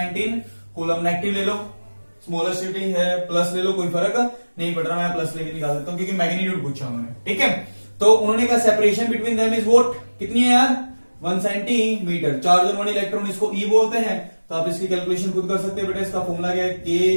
कूलम। नेगेटिव ले लो, स्मॉलेस्ट यूनिट है, प्लस ले लो, कोई फर्क नहीं पड़ रहा, मैं प्लस लेके निकाल देता हूं क्योंकि मैग्नीट्यूड पूछा उन्होंने, ठीक है। तो उन्होंने कहा separation between them is what, कितनी है यार 1 सेंटीमीटर। चार्ज ऑन 1 इलेक्ट्रॉन इसको ई बोलते हैं, तो आप इसकी कैलकुलेशन खुद कर सकते हैं बेटा। इसका फॉर्मूला क्या है,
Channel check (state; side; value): inverted; both; correlation -1.00